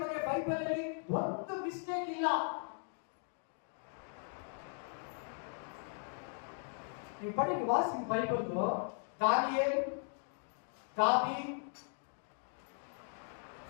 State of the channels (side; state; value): right; silent; 52 dB below the other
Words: ಬಗ್ಗೆ ಬೈಬಲ್ ಅಲ್ಲಿ ಒಂದು ಮಿಸ್ಟೇಕ್ ಇಲ್ಲ. ನೀವು ಪಡಿ ವಾಸಿ ಬೈಬಲ್. ದಾನಿಯೇಲ್, ದಾವೀದ್,